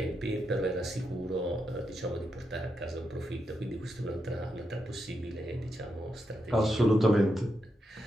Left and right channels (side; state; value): both; normal; correlation 0.84